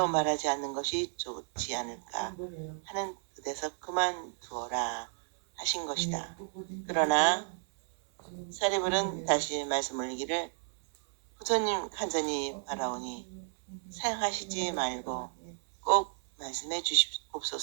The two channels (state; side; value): silent; left; 56 dB below the other